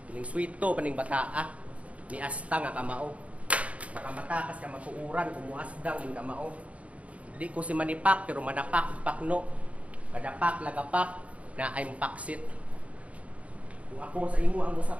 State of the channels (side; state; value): left; late; 0.066 ms